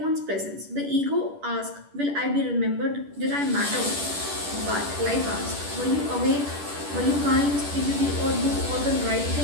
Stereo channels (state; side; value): late; left; 10 ms